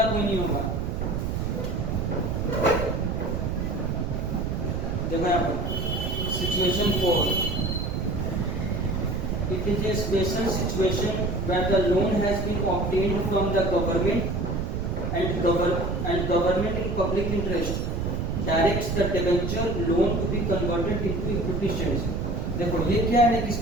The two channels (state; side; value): noise; right; rumble, 1 dB below the sound